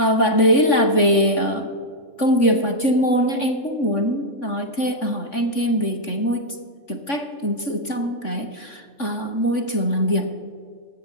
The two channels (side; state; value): right; late; 3.5 ms